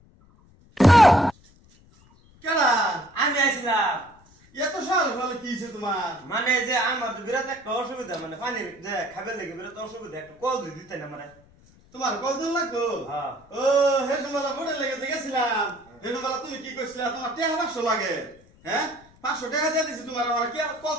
কেডা আমি আইছিলাম। এত সকাল সকালে কি হয়েছে তোমার? মানে যে আমার তো বিরাট একটা অসুবিধা, মানে পানি যে খাবার লেগে বিরাট অসুবিধা, একটা কল দিয়ে দিতে না মানে। তোমার কতদিন লাগতো? হ্যাঁ। ও হেসুমালা বোর্ডে লেগে গেছিলাম। হেসুমালা তুমি কি কইছিলা তোমার টাকা 500 লাগে? হ্যাঁ 500 টাকা দিয়ে দিছি তোমার, আমার কি আর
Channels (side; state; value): left; noise; rumble, 28 dB below the sound